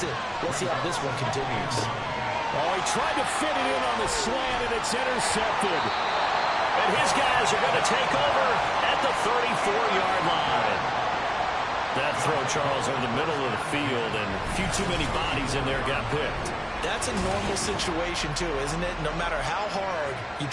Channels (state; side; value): identical; both; correlation 1.00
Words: it. Let's see how this one continues. Oh, he tried to fit it in on the slant, and it's intercepted. And his guys are going to take over at the 34-yard line. That throw, Charles, over the middle of the field, and a few too many bodies in there got picked. That's a normal situation, too, isn't it? No matter how hard you